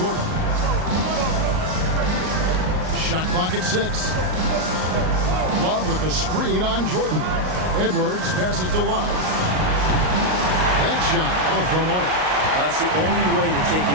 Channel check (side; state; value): left; late; 38 ms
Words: Shot clock at 6. Love with the screen on Jordan. Edwards passes to Love. That shot off the mark. Well, that's the only way to take